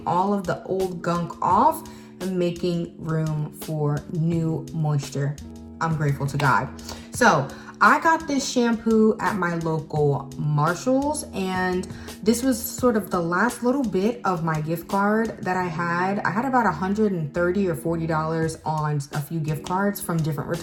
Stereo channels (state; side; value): identical; both; correlation 1.00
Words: all of the old gunk off and making room for new moisture. I'm grateful to God. So I got this shampoo at my local Marshall's, and this was sort of the last little bit of my gift card that I had. I had about $130 or $40 on a few gift cards from different